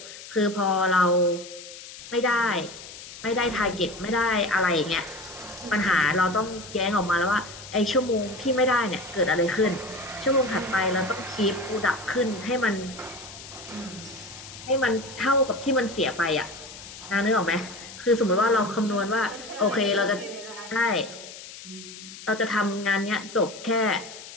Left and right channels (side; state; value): left; noise; hiss, 15 dB below the sound